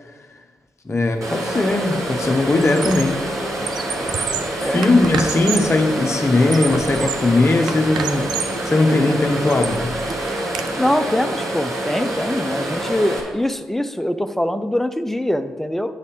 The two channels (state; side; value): normal; both; correlation 0.86